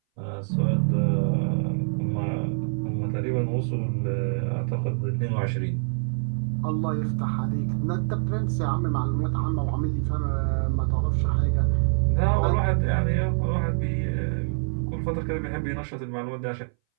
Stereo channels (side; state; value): left; silent; 60 dB below the other